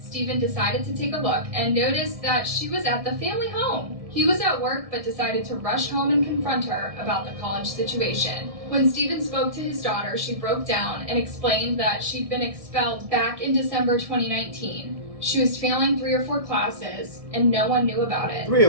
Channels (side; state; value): left; late; 1.6 ms